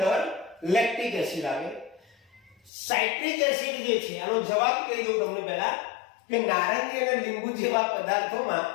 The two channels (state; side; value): drops out; right; at 2.7 s